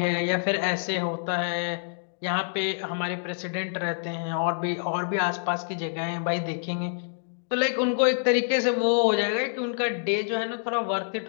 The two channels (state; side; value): silent; right; digital silence